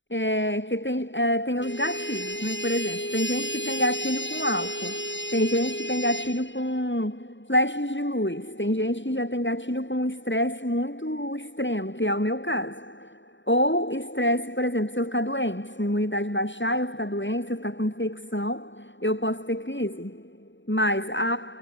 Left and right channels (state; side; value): late; right; 0.54 ms